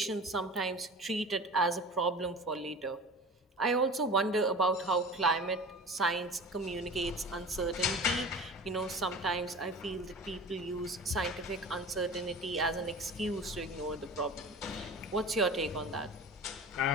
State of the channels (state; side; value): normal; both; correlation 0.37